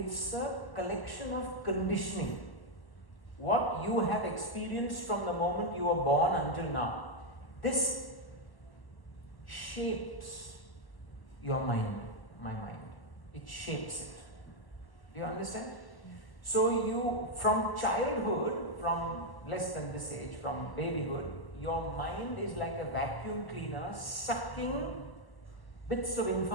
a collection of conditioning. What you have experienced from the moment you were born until now. This shapes your mind, my mind. It shapes it. Do you understand? So you, from childhood, from less than this age, from babyhood, your mind is like a vacuum cleaner sucking bits of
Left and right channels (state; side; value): late; right; 1.0 ms